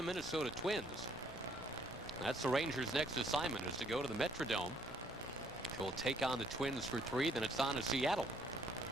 Minnesota Twins. That's the Rangers' next assignment, is to go to the Metrodome. They will take on the Twins for 3. Then it's on to Seattle.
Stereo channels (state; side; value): normal; both; correlation 0.65